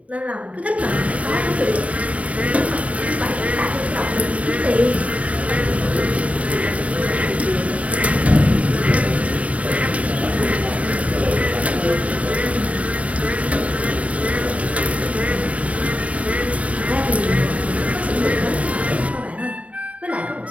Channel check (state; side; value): late; left; 0.067 ms